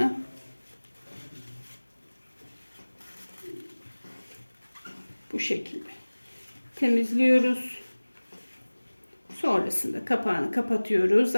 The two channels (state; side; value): inverted; both; correlation -1.00